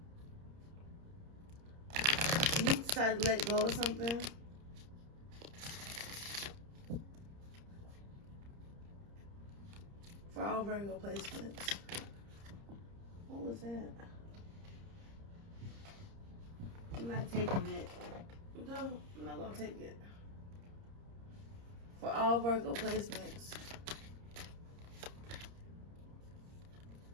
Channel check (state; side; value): late; left; 30 ms